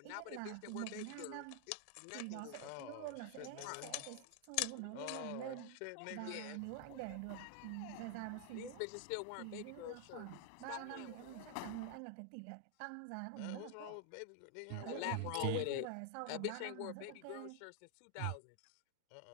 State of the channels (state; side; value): different; both; correlation 0.00